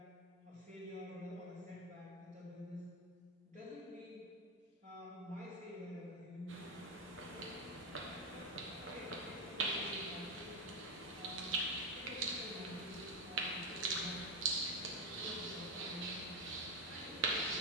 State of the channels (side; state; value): both; normal; correlation 0.09